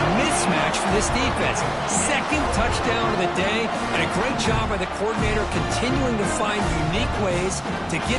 mismatch for this defense. 2nd touchdown of the day, and a great job by the coordinator continuing to find unique ways to get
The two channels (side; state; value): both; identical; correlation 1.00